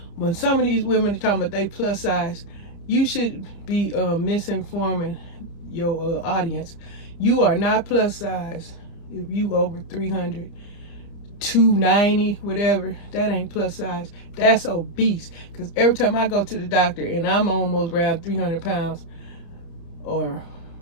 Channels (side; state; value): right; late; 30 ms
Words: when some of these women are talking about they plus size, you should be misinforming your audience. You are not plus size if you over 300, 290, whatever. That ain't plus size. That's obese. Because every time I go to the doctor and I'm almost around 300 pounds or